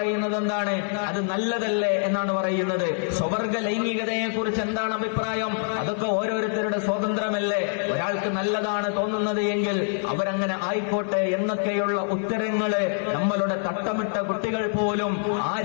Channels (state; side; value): silent; right; 62 dB below the other